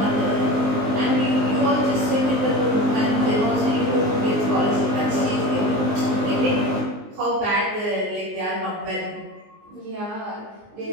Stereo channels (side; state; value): left; late; 19 ms